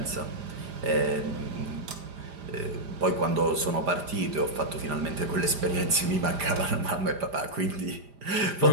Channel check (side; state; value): left; late; 5.0 ms